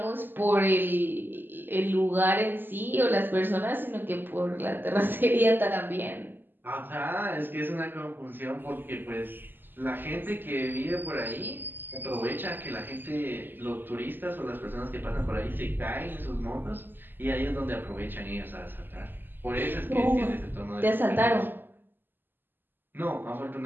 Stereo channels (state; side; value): late; left; 0.094 ms